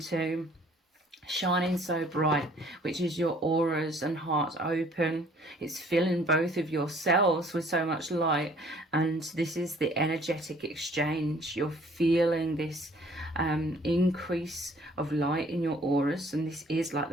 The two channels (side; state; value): both; normal; correlation 0.57